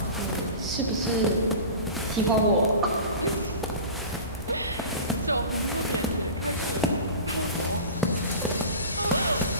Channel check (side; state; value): both; inverted; correlation -0.34